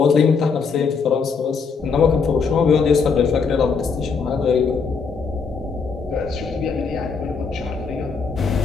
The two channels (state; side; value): quieter; right; 5.3 dB